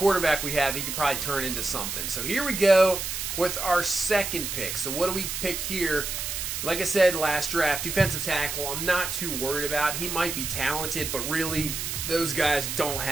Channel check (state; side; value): noise; right; hiss, 4 dB below the sound